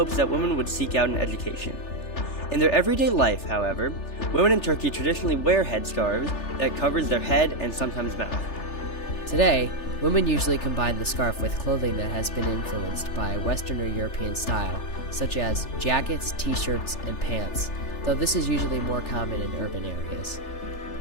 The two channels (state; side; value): late; right; 3.4 ms